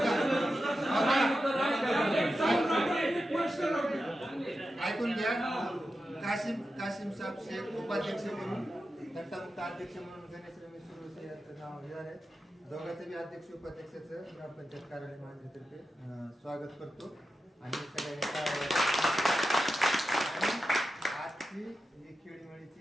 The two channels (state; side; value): normal; both; correlation 0.91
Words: ऐकून घ्या. काशिम साहेब शेख उपाध्यक्ष म्हणून, घंटामुक्त अध्यक्ष म्हणून गणेश रमेश सुरवसे यांचं नाव घेणार आहे. दोघांचं बी अध्यक्ष उपाध्यक्षाचं ग्रामपंचायत कार्यालय महानगरतर्फे स्वागत करतो. आणि सगळ्यांनी आजची ही